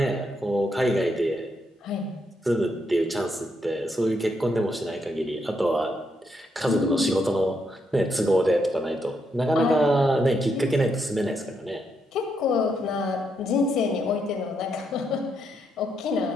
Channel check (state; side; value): normal; both; correlation 0.79